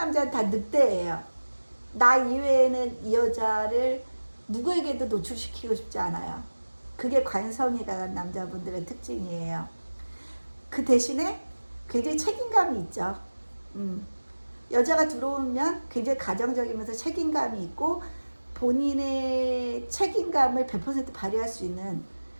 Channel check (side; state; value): both; inverted; correlation -1.00